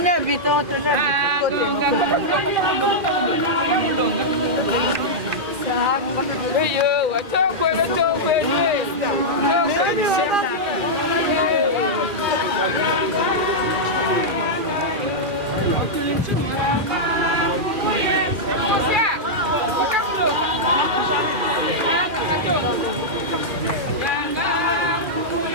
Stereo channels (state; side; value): late; left; 2.4 ms